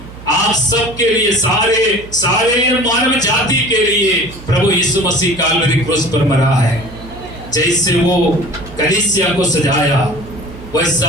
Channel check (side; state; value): right; noise; hum, 16 dB below the sound